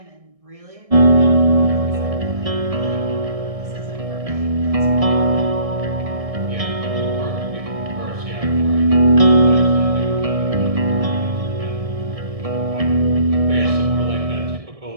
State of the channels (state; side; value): late; left; 1.6 ms